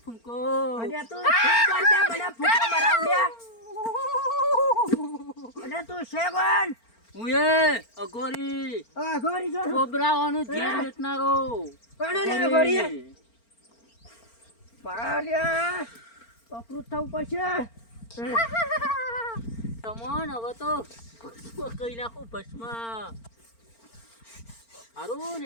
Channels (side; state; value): right; late; 4.4 ms